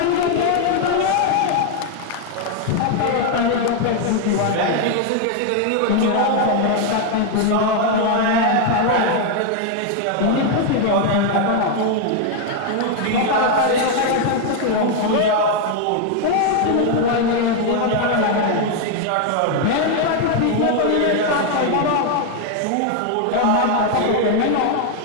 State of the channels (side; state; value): both; different; correlation 0.00